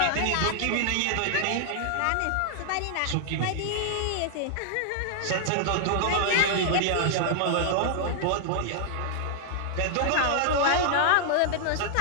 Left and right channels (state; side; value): different; both; correlation -0.01